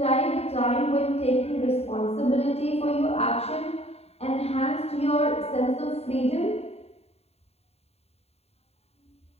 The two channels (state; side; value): late; right; 0.30 ms